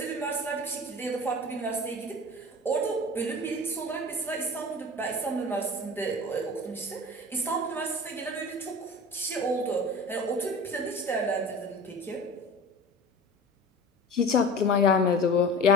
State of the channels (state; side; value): normal; both; correlation 0.37